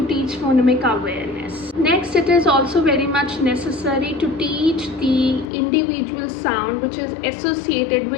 teach phonemic awareness. Next, it is also very much necessary to teach the individual sound which is associated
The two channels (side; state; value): right; drops out; at 5.5 s